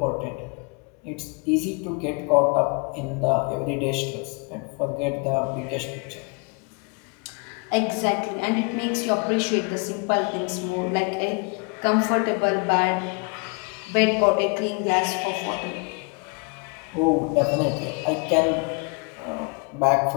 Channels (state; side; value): quieter; right; 32.0 dB